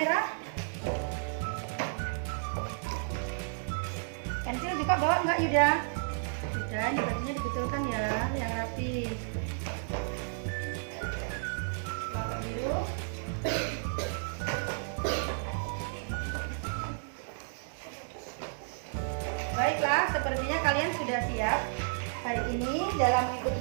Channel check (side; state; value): left; silent; 56 dB below the other